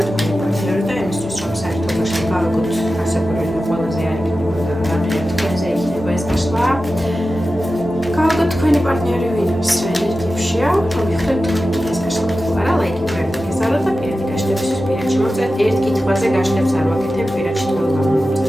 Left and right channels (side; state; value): both; normal; correlation 0.93